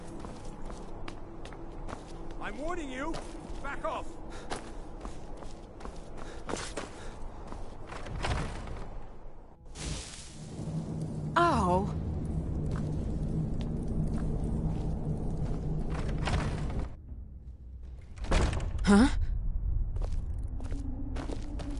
I'm warning you! Back off! Oh. Huh?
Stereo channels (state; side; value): identical; both; correlation 1.00